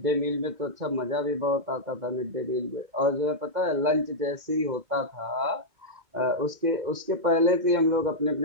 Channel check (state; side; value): late; left; 2.1 ms